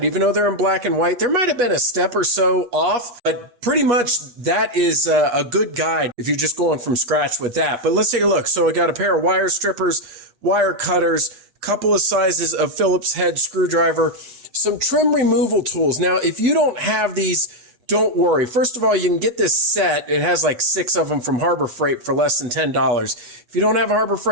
Even though they're in black and white, there might have been a step or so off, but pretty much that is a good guide if you're just going from scratch with that. But let's take a look. So I got a pair of wire strippers, wire cutters, a couple of sizes of Phillips head screwdriver, some trim removal tools. Now, if you don't have these, don't worry. First of all, you can get this set. It has like 6 of them from Harbor Freight for less than $10. If you don't have a Harbor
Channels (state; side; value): late; left; 8.2 ms